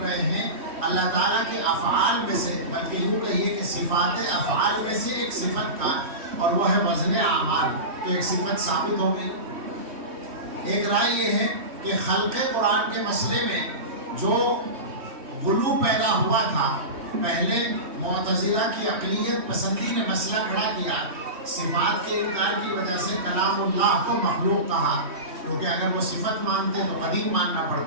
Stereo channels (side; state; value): left; late; 3.2 ms